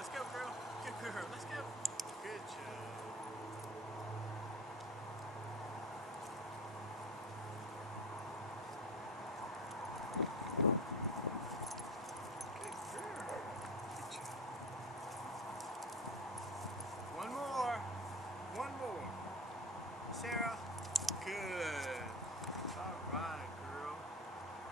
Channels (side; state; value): both; normal; correlation 0.30